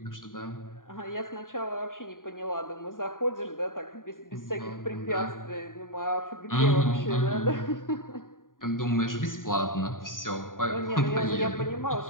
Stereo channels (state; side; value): late; right; 0.90 ms